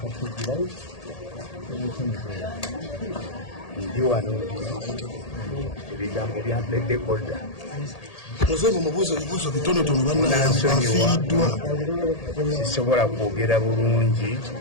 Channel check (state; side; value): late; right; 1.8 ms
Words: kizirai ndi wano ebigambo bya dekoda Muzeevu mubuuza ebibuuzo bitonotono bannayafiiddwa sisobola kwogera bulungi